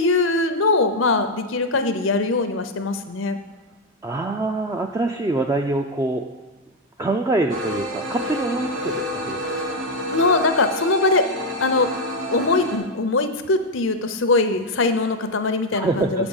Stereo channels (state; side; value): normal; both; correlation 0.04